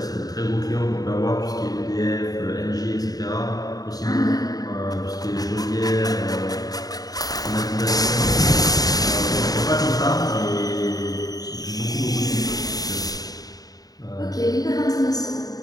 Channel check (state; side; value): late; right; 0.18 ms